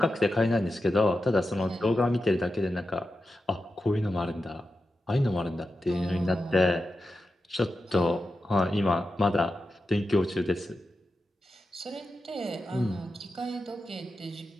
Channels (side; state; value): both; normal; correlation 0.90